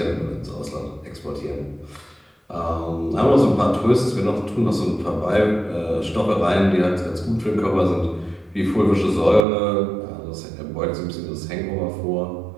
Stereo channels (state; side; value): drops out; left; at 9.5 s